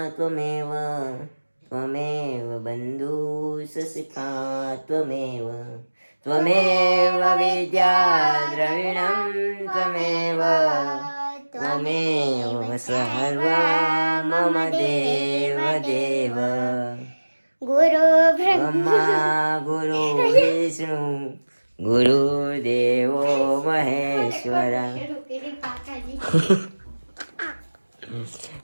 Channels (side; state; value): both; inverted; correlation -1.00